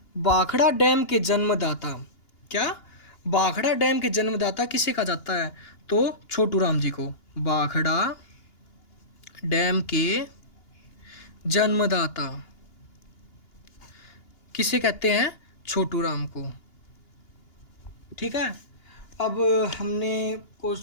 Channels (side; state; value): right; late; 2.8 ms